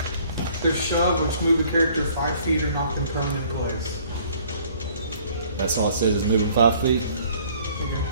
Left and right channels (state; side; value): inverted; both; correlation -0.57